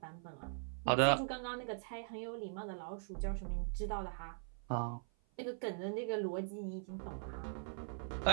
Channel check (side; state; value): left; silent; 50 dB below the other